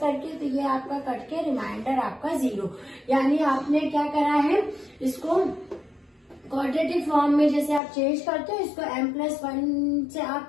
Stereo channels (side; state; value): right; drops out; at 7.8 s